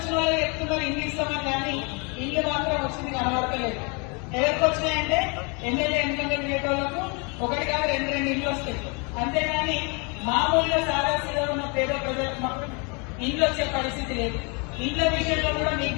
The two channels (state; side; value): quieter; right; 32.7 dB